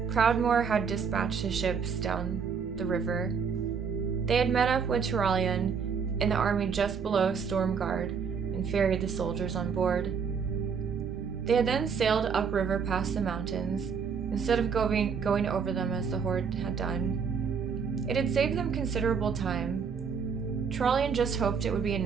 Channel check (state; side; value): quieter; left; 6.2 dB